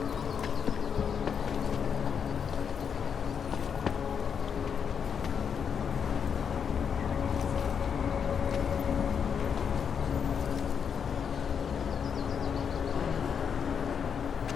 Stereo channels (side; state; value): right; quieter; 7.1 dB